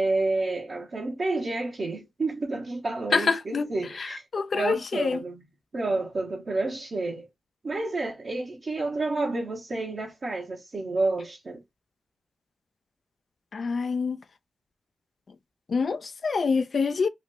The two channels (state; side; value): normal; both; correlation 0.89